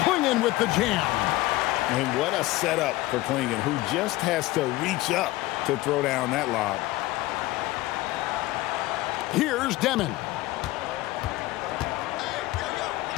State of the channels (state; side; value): quieter; right; 18.2 dB